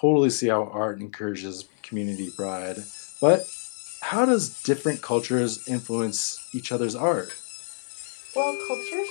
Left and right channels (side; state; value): right; silent; 59 dB below the other